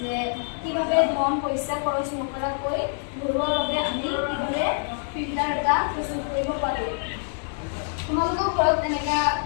কিভাৱে ধন পইচা খৰচ নকৰাকৈ ঘৰুৱাভাৱে আমি কিভাৱে ফিল্টাৰ এটা প্ৰস্তুত কৰিব পাৰোঁ। তোমালোকেও ঘৰত এনেকুৱা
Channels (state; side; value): silent; right; digital silence